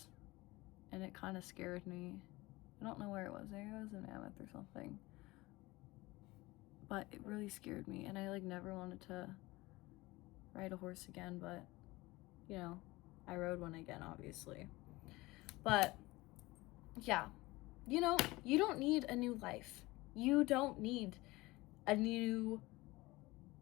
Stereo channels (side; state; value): right; quieter; 20.9 dB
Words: and it kind of scared me. I don't know where it was. Maybe it was in Mammoth or something. But it really scared me, and I like never wanted to ride a horse again. But you know, I rode one again, obviously. But yeah, you know, you don't need a new life. You don't need a new